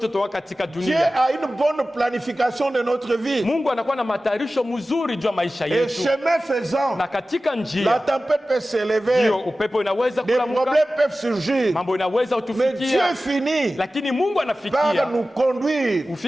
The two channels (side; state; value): both; normal; correlation 0.95